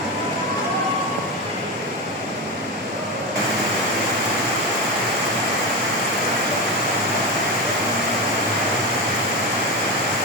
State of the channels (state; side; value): normal; both; correlation 0.18